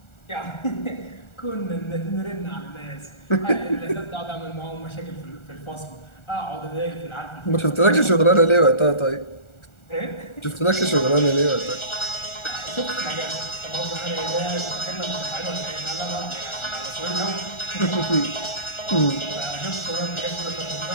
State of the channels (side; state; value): right; late; 1.4 ms